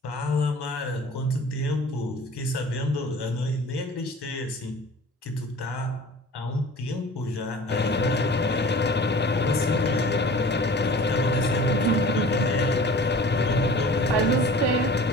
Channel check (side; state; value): both; normal; correlation 0.43